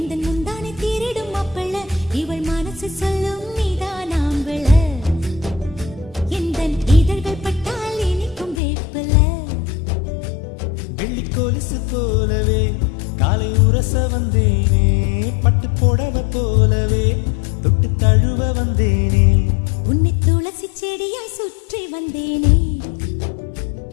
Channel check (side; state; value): right; drops out; at 8.6 s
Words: முந்தானை தீரிடும் அப்பள இவள் மனசு சொல்லும் நீதான் ஆம்பள எந்த இதழ்கள் பட்டால் இனிக்கும் வேப்பல வெள்ளி கொலுசு போலவே காலை உரச வந்தேனே பட்டு புடவ போலவே தொட்டு தழுவ வந்தேனே உன்னை துளசி செடியாய் சுற்றி வந்தேனே